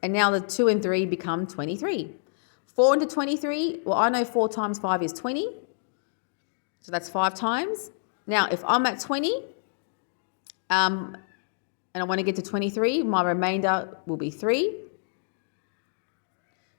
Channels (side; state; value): right; silent; digital silence